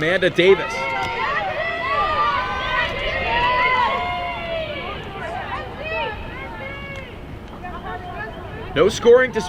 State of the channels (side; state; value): both; identical; correlation 1.00